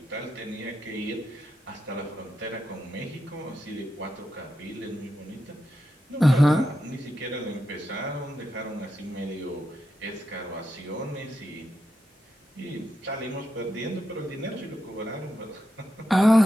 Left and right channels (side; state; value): both; normal; correlation 0.86